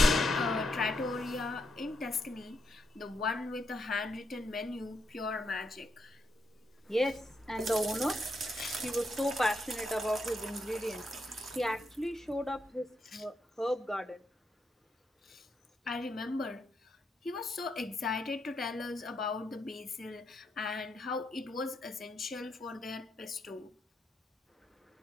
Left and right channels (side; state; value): both; normal; correlation 0.80